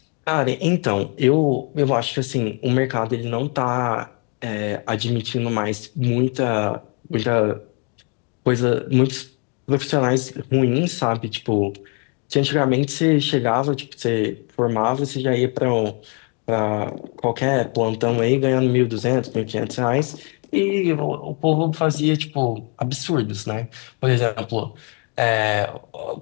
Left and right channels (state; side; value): quieter; right; 36.5 dB